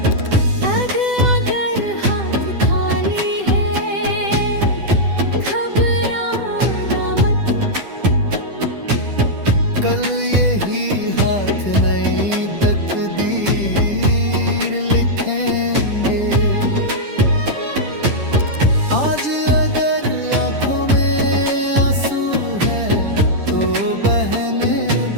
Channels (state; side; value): late; left; 10 ms